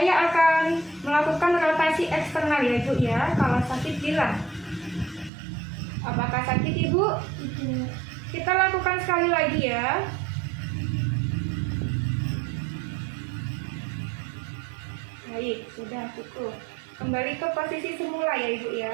akan melakukan rotasi eksternal ya Bu ya. Kalau sakit bilang. Apakah sakit Ibu? Tidak. Kita lakukan sekali lagi ya. Baik, sudah cukup. Kembali ke posisi semula ya Ibu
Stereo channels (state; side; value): drops out; left; at 5.3 s